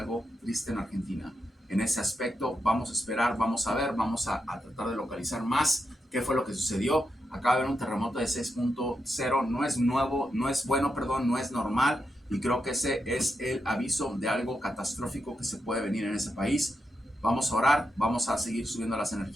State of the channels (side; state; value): both; normal; correlation 0.85